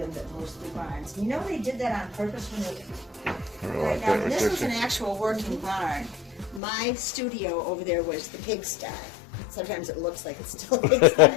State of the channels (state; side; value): drops out; right; at 6.6 s